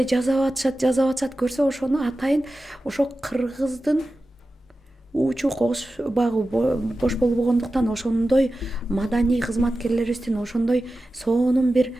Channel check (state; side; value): normal; both; correlation 0.94